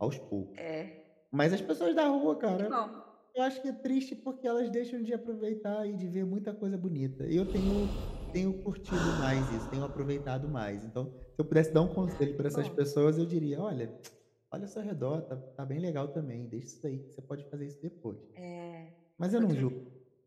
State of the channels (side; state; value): both; identical; correlation 1.00